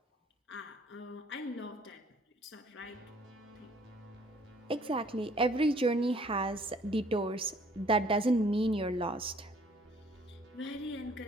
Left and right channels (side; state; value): both; normal; correlation 0.59